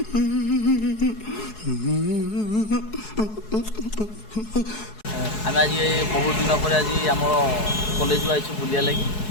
आम आज बहुत दिन पर आज आम कॉलेज को आई बुलिया लगी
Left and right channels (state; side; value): late; right; 4.7 ms